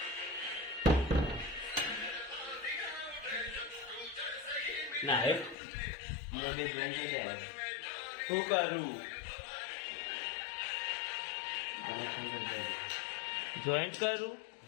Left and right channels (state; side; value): drops out; right; at 5.6 s